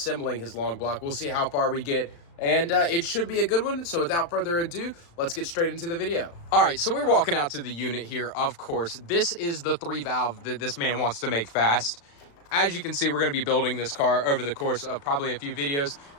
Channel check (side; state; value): right; late; 36 ms